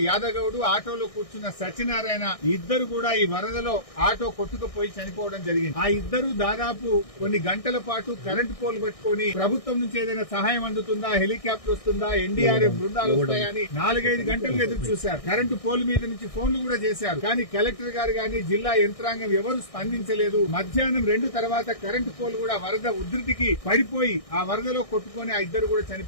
యాదగౌడు, ఆటోలో కూర్చున్న సత్యనారాయణ ఇద్దరు కూడా ఈ వరదలో ఆటో కొట్టుకుపోయి చనిపోవడం జరిగింది. ఆ ఇద్దరు దాదాపు కొన్ని గంటల పాటు కరెంటు పోల్ పెట్టుకుని ప్రభుత్వం నుంచి ఏదైనా సహాయం అందుతుందా, హెలికాప్టర్ వస్తుందా, ఎన్డీఆర్ఎఫ్ బృందాలు వస్తాయని 4-5 గంటలు ఎదురు చూశారు. కరెంటు పోల్ మీద నుంచి ఫోన్లు కూడా చేశారు. కానీ కలెక్టర్ గారు గాని జిల్లా యంత్రాంగం ఎవరు స్పందించలేదు. మధ్యాహ్నం 2 తర్వాత కరెంటు పోల్ కూడా వరద ఉధృతికి పడిపోయి ఆ వరదలో కొట్టుకుని ఆ ఇద్దరు కూడా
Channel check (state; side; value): late; right; 1.6 ms